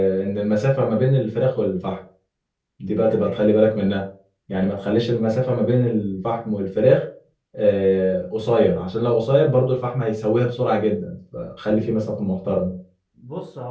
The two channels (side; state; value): both; identical; correlation 1.00